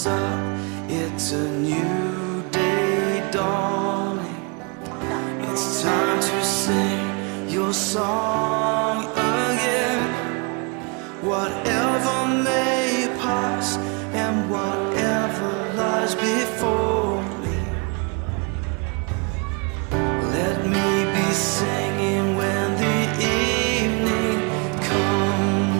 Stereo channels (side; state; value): left; quieter; 32.7 dB